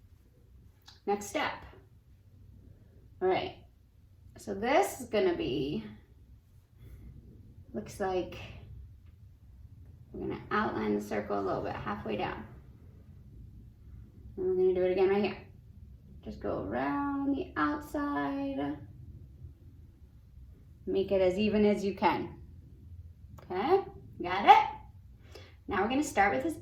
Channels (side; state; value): both; identical; correlation 1.00